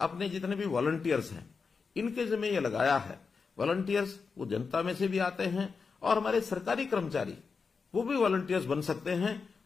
अपने जितने भी वॉलंटियर्स हैं इनके जिम्मे ये लगाया है। वॉलंटियर्स वो जनता में से भी आते हैं और हमारे सरकारी कर्मचारी वो भी वॉलंटियर्स बन सकते हैं।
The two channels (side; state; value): right; quieter; 5.1 dB